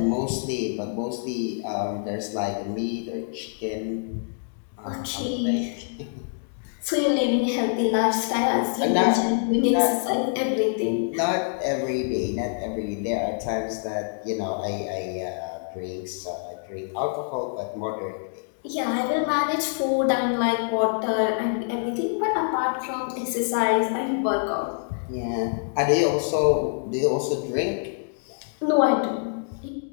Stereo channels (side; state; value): right; silent; digital silence